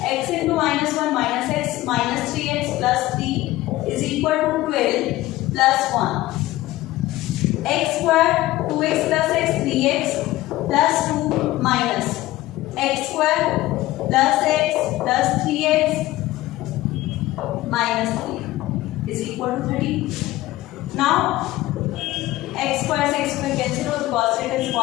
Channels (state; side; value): quieter; right; 16.9 dB